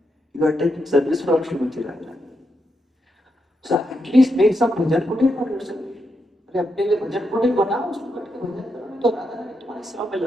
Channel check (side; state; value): both; normal; correlation 0.83